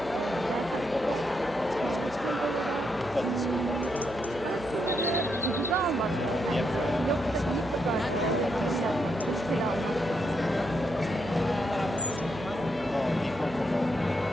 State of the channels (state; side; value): noise; right; hum, 17 dB below the sound